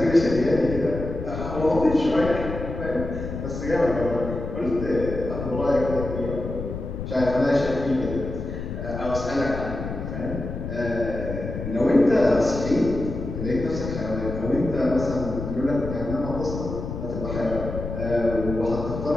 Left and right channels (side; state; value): left; noise; rumble, 6 dB below the sound